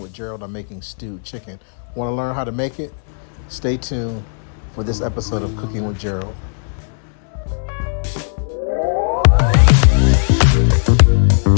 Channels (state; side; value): silent; right; 68 dB below the other